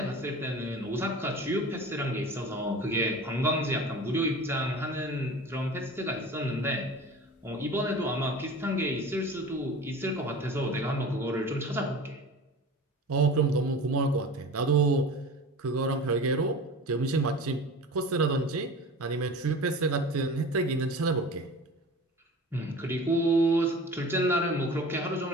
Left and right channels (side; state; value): both; normal; correlation 0.37